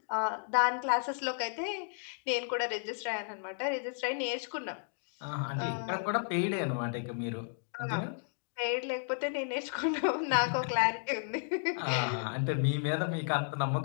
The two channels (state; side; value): silent; right; digital silence